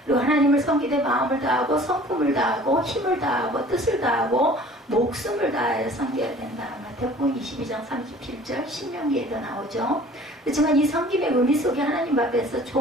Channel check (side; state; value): both; normal; correlation 0.48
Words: 그리고 하나님을 섬기되 마음을 다하고 성품을 다하고 힘을 다하고 뜻을 다하고 목숨을 다하여 섬겨야 된다. 마태복음 22장 37절 신명기에도 나오죠. 그렇지만 이 섬김의 의미 속에 하나님 앞에서